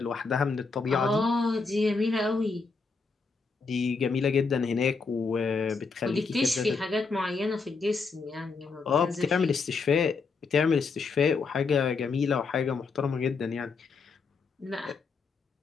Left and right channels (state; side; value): quieter; right; 4.6 dB